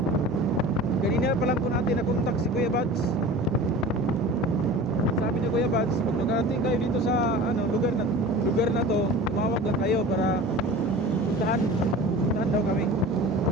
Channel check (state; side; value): normal; both; correlation 0.38